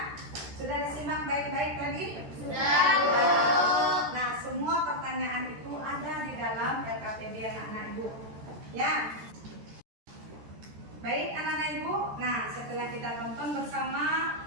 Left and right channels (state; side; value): late; left; 14 ms